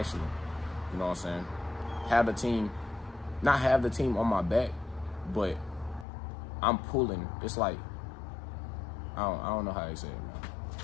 You know what I'm saying? have the team, not have the team on my back, but I'm pulling. It's like, I don't know how they say it, man.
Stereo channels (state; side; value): drops out; right; at 6.1 s